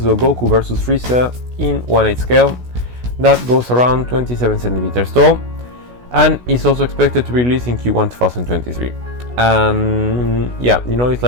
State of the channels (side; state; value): left; late; 16 ms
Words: Goku vs Frisa in 1/8 scale. That goes around 27 centimeters tall, and is also expected to release in Q1 2023. And yeah, you know, it's